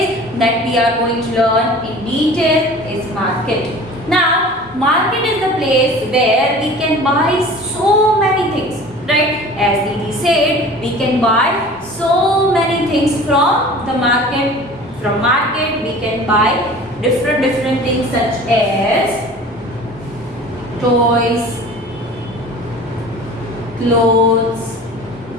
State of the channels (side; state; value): both; normal; correlation 0.42